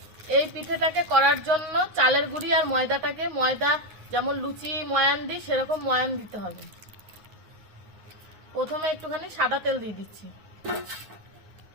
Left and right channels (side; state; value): left; late; 9.5 ms